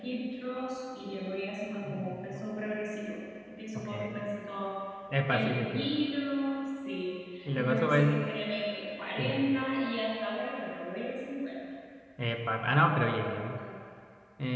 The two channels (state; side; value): identical; both; correlation 1.00